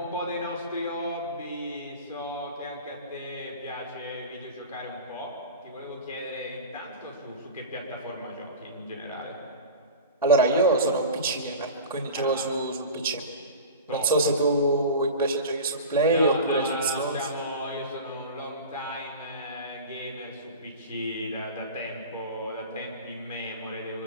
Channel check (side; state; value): both; inverted; correlation -0.32